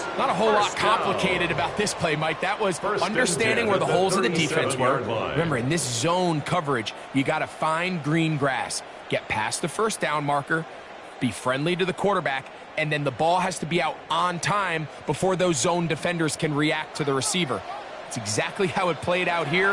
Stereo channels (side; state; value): both; identical; correlation 1.00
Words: Not a whole lot complicated about this play, Mike. That was understanding where the holes of the defense were. Remember, in this zone coverage, you got to find green grass. Get past the 1st down marker, be friendly to the quarterback, and then the ball has to be out on time before those zone defenders can react to the receiver. It's exactly how it played out